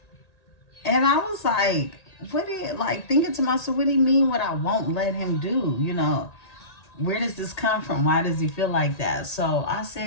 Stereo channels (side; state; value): right; late; 1.8 ms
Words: And I was like, thinking to myself, what do you mean what I won't let him do? Where does this come from? Why does he feel like that? So I